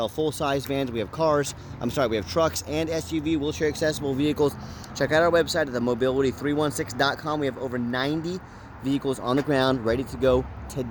full-size vans, we have we have trucks and SUV wheelchair accessible vehicles. Check out our website at themobility316.com. We have over 90 vehicles on the ground ready to go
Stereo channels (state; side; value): identical; both; correlation 1.00